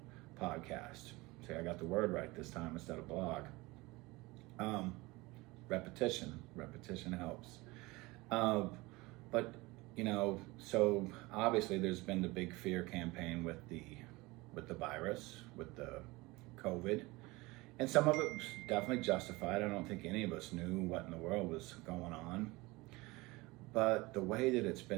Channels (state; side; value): quieter; left; 22.3 dB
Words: podcast. See, I got the word right this time instead of blog. Repetition helps. But so obviously there's been the big fear campaign with the virus, with the COVID, and some of it was definitely justified. I don't think any of us knew what in the world was going on, but the way that it's